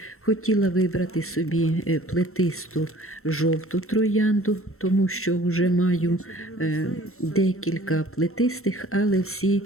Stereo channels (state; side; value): late; right; 0.63 ms